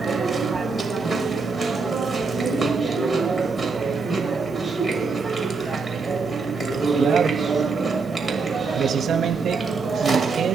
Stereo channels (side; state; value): left; quieter; 4.4 dB